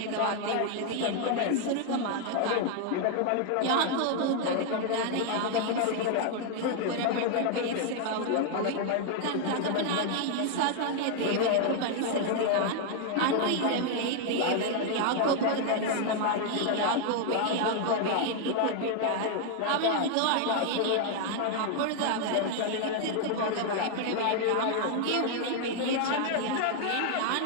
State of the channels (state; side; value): different; both; correlation 0.00